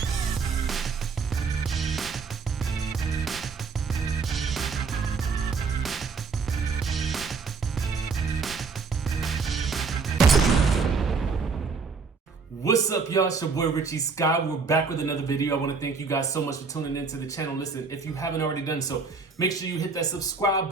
What's up, y'all? It's your boy Richie Sky. We're back with another video. I want to thank you guys so much for tuning into the channel. Listen, if you haven't already done so, make sure you hit that subscribe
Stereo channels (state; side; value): quieter; left; 4.8 dB